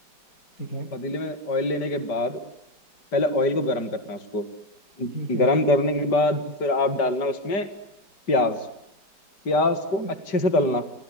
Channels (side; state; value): right; late; 5.1 ms